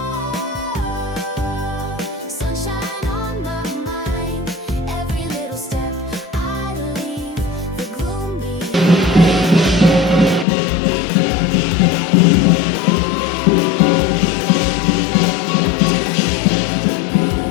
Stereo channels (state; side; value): drops out; right; at 10.5 s